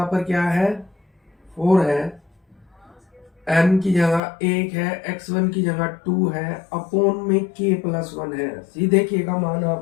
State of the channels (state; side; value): drops out; right; at 4.2 s